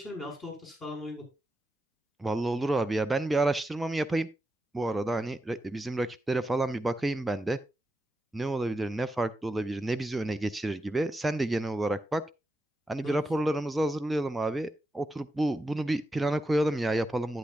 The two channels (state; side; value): normal; both; correlation 0.88